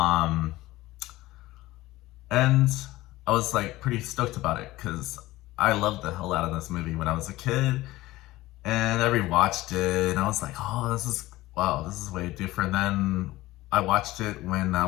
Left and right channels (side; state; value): right; quieter; 17.8 dB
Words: and I was like pretty stoked about it because I loved the hell out of this movie when I was a kid, and I rewatched it, and I was like, oh, this is wow, this is way different than I watched it when I